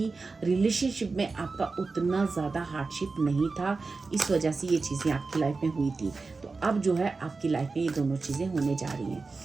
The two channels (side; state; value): left; quieter; 4.1 dB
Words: रिलेशनशिप में आपका उतना ज़्यादा हार्डशिप नहीं था, इस वजह से ये चीज़ें आपकी लाइफ में हुई थी। तो अब जो है आपकी लाइफ में ये दोनों चीज़ें होने जा रही हैं।